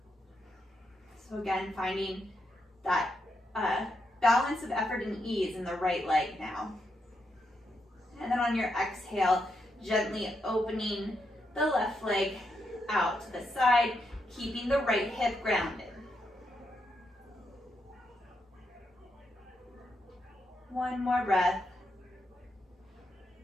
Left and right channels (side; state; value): both; normal; correlation 0.81